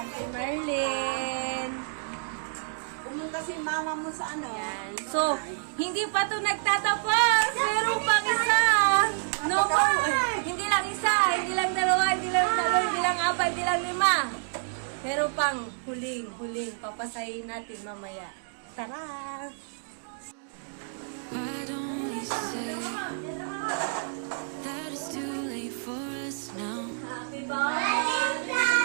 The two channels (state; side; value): silent; left; digital silence